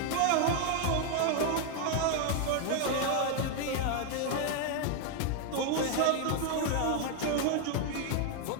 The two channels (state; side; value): different; both; correlation 0.01